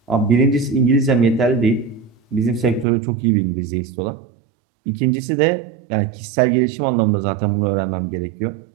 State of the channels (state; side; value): drops out; left; at 2.9 s